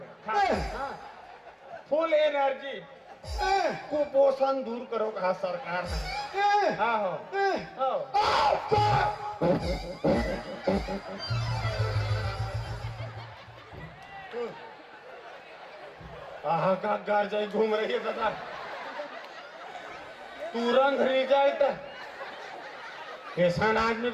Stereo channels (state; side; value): identical; both; correlation 1.00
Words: फुल एनर्जी कुपोषण दूर करो कहा सरकार ने। हाँ हो आहा का घर जाए घूम रही है दादा, तुरंत रिजल्ट। ऐसा आदमी